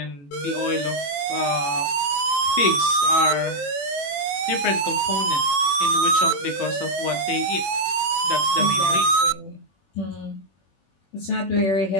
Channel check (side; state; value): right; late; 21 ms